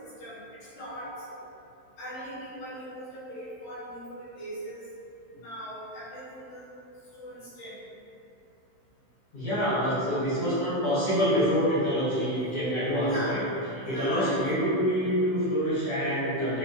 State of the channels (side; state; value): right; late; 16 ms